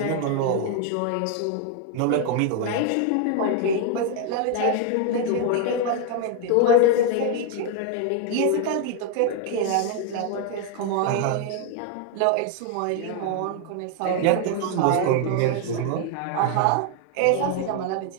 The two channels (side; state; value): both; different; correlation 0.01